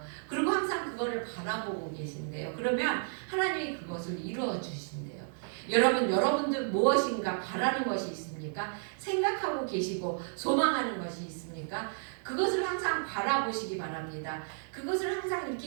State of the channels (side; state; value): left; silent; digital silence